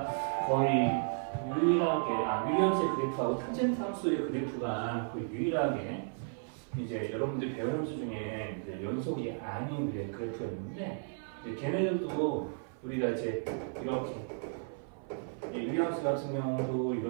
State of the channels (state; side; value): silent; left; 55 dB below the other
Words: 거의 유일하게, 유리함수의 그래프하고 탄젠트 함수의 그래프가 거의 유일하게 이제 여러분들이 배운 함수 중에 이제 연속이 아닌 그래프였는데, 이제 걔네들도 우리가 이제 이렇게 유리함수 같은 경우도